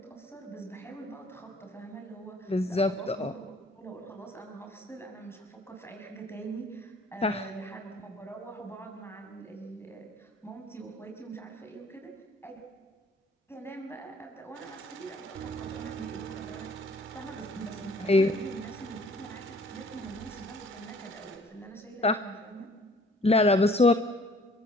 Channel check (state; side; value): normal; both; correlation 0.56